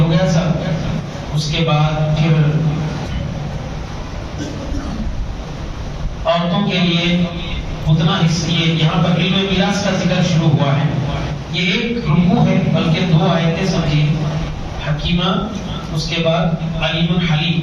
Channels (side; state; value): both; identical; correlation 1.00